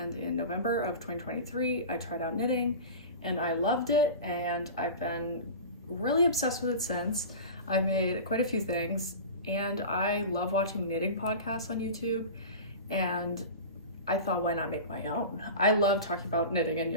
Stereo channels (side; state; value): both; inverted; correlation -0.31